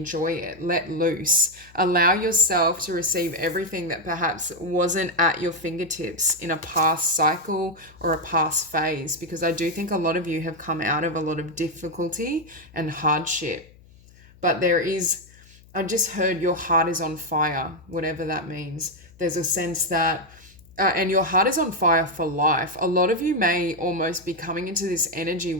it, let loose, allow yourself to receive everything that perhaps wasn't at your fingertips in a past cycle or a past phase, because I do think a lot of you have come out of a lot of difficulty and hardship. But I just heard your heart is on fire, whatever that means. There's a sense that and your heart is on fire for life. A lot of you may almost be coming into this energy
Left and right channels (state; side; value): noise; left; hum, 25 dB below the sound